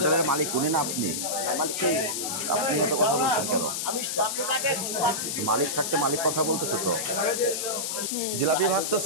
মালিক উনি না আপনি? আপনি এত কথা বলছেন কেন? মালিক থাকতে মালিক কথা বলতেছে তো। জিলাপি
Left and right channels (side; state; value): left; noise; hiss, 2 dB below the sound